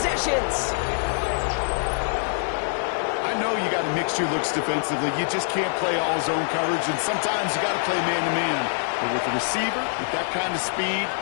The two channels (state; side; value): silent; right; digital silence